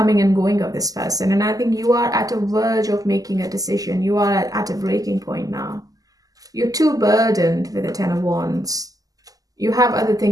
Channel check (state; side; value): late; left; 0.17 ms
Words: and going of this person, and I think you are at a verge of making a decision. You are at a breaking point now. You're too burdened with the Ten of Wands. You have other